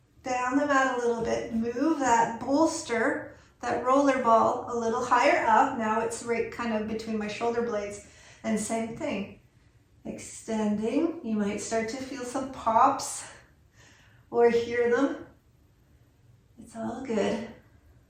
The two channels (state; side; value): identical; both; correlation 1.00